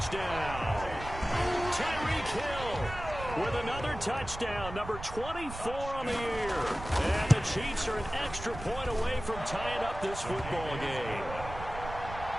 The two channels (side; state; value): right; noise; rumble, 11 dB below the sound